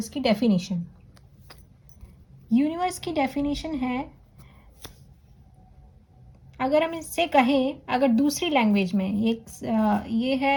की डेफिनेशन। यूनिवर्स की डेफिनेशन है, अगर हम इससे कहें, अगर दूसरी लैंग्वेज में ये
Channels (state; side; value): identical; both; correlation 1.00